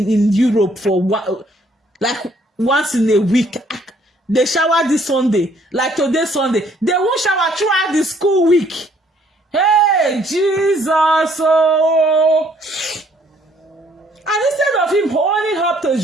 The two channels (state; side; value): normal; both; correlation 0.64